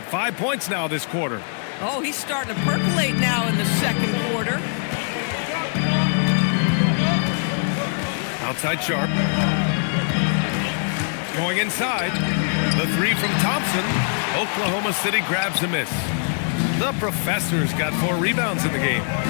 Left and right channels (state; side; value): silent; right; 64 dB below the other